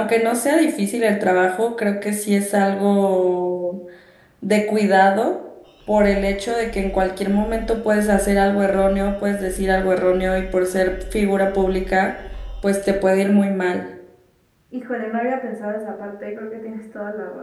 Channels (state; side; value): identical; both; correlation 1.00